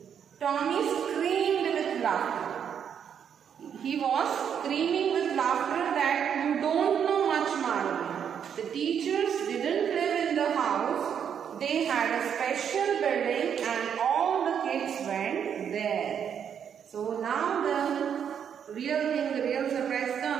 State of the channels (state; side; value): quieter; left; 8.1 dB